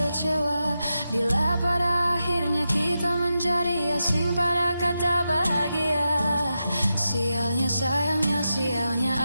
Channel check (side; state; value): both; inverted; correlation -0.89